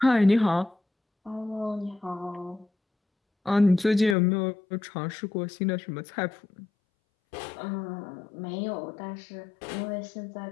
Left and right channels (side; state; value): right; drops out; at 4.2 s